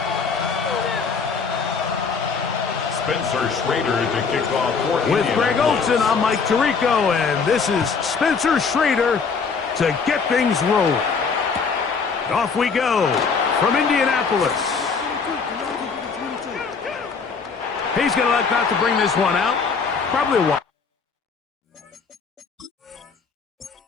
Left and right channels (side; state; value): right; quieter; 5.3 dB